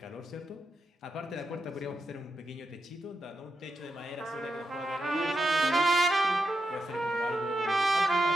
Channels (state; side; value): normal; both; correlation 0.86